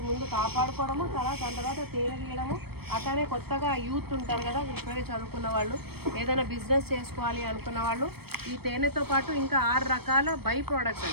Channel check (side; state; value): left; late; 0.96 ms